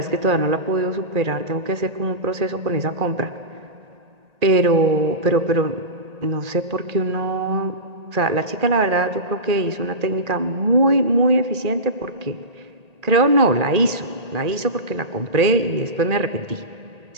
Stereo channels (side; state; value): left; late; 1.8 ms